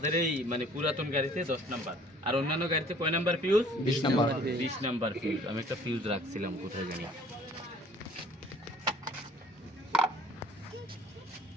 এই মানে পুরাতন গাড়িতে 10 নাম্বার, আর অন্যান্য গাড়িতে কয় number fuse? 20 number. 20 number fuse. আমি একটা ফিউজ রাখছিলাম কোথায় জানি,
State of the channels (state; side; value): normal; both; correlation 0.54